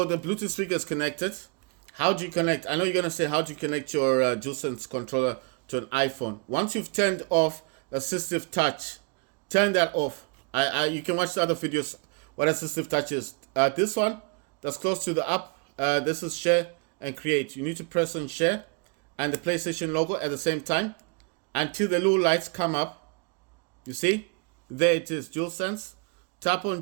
the Bluetooth speaker is connected. How do you connect? I know you're going to say, how do you connect your DualSense controller to an iPhone? Once you've turned off assistive touch, turn that off. You can watch the other videos what assistive touch is. This one that's close to the app, this is share and create. You need to press on share and the PlayStation logo at the same time until the little lights come up. You see? There it is, DualSense. Tap on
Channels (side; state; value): left; quieter; 32.7 dB